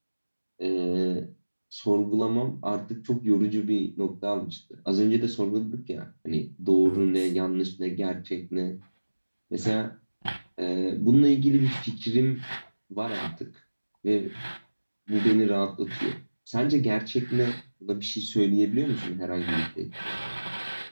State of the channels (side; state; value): both; inverted; correlation -1.00